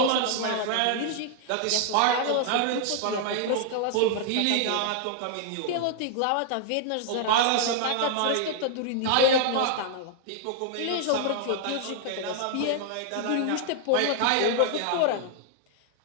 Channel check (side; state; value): both; different; correlation 0.00